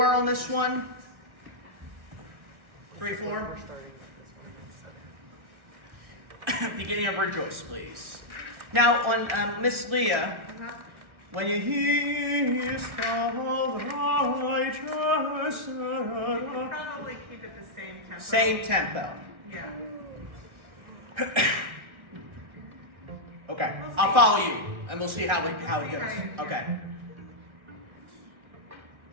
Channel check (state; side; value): late; left; 1.4 ms